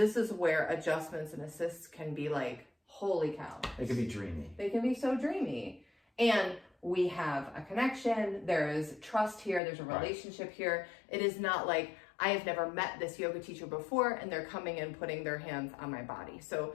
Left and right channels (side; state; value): right; drops out; at 9.6 s